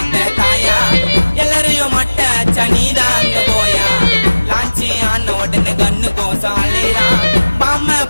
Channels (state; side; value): inverted; both; correlation -1.00